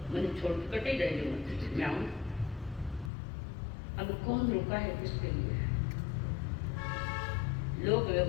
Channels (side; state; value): right; drops out; at 3.1 s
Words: मैंने छोड़ के कटे गए जो मैं आऊँ, अब कौन रुका है किसके लिए। लोग